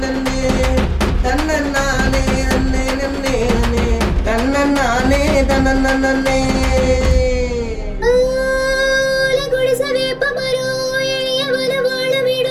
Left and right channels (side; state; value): both; identical; correlation 1.00